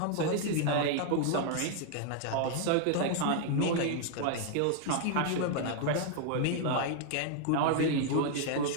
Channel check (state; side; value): different; both; correlation 0.00